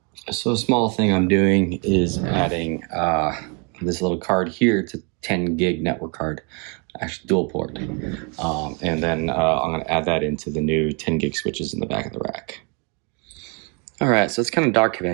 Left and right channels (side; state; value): left; quieter; 34.7 dB